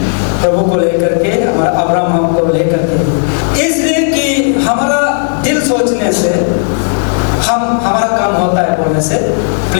प्रभु को लेकर के, हमारा अब्राहम को लेकर के। इसलिए कि हमारा दिल सोचने से हमारा काम होता है बोलने से।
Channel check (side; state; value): right; silent; digital silence